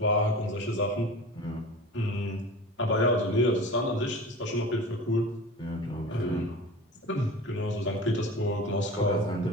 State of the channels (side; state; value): both; normal; correlation 0.36